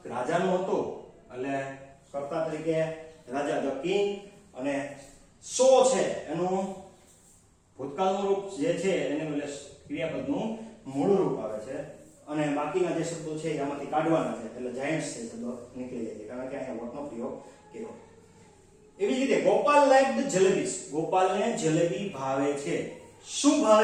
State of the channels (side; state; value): both; identical; correlation 1.00